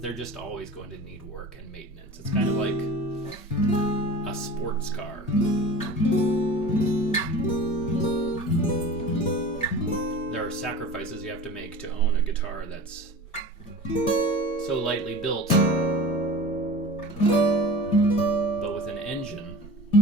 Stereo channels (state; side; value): normal; both; correlation 0.37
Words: they're just always going to need work and maintenance. It's kind of like a sports car. There are sacrifices you have to make to own a guitar that's so lightly built, but with an engine.